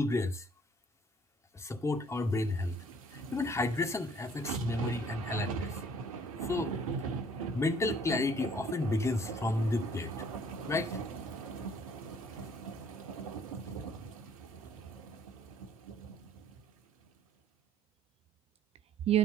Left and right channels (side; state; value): both; normal; correlation 0.58